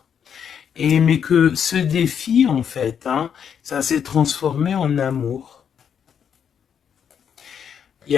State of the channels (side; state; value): right; quieter; 7.9 dB